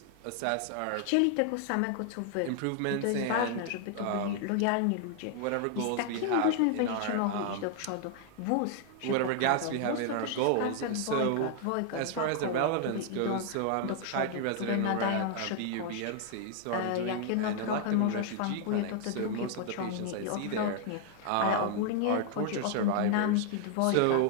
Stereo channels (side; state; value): both; different; correlation 0.00